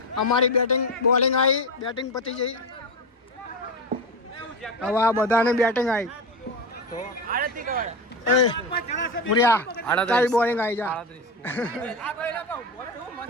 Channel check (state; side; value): normal; both; correlation 0.18